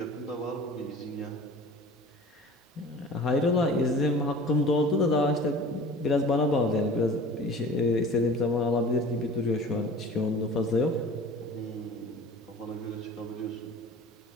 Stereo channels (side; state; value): both; normal; correlation 0.41